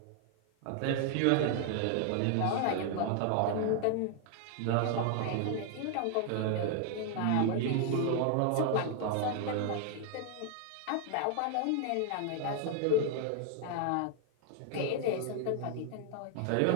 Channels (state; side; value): different; both; correlation 0.00